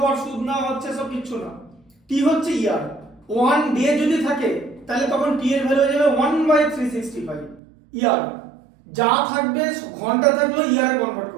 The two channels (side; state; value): left; drops out; at 7.6 s